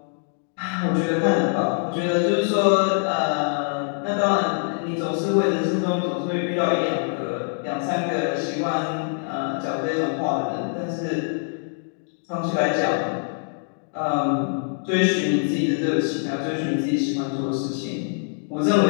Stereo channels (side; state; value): right; silent; digital silence